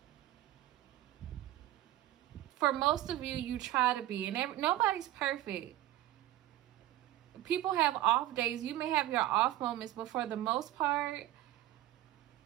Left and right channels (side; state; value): left; quieter; 14.5 dB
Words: For most of you, you try to be, and nobody's perfect. People have off days. You may have your off moments, but for the most part,